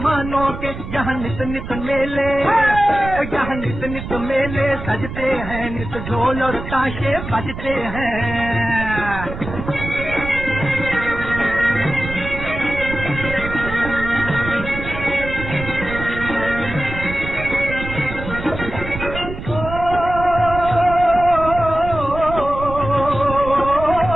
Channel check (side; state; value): right; noise; rumble, 9 dB below the sound